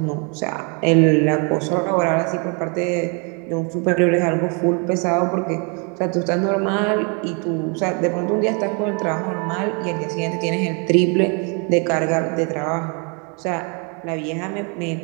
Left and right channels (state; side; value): quieter; left; 35.2 dB